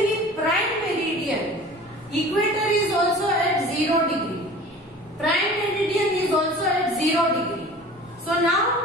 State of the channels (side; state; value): both; normal; correlation 0.42